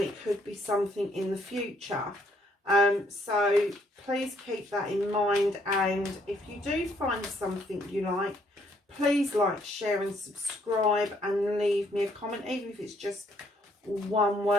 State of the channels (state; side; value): normal; both; correlation 0.68